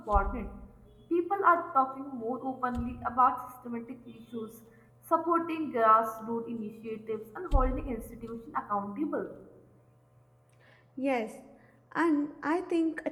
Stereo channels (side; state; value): both; identical; correlation 1.00